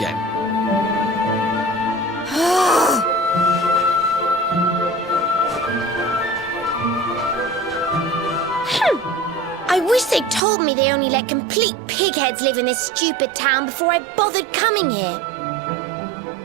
I wish they'd told me they only let complete pigheads live in this stupid town before I bothered coming here.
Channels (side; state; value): left; drops out; at 10.4 s